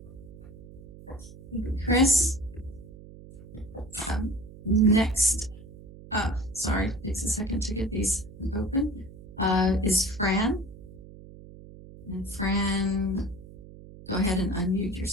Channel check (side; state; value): right; noise; hum, 17 dB below the sound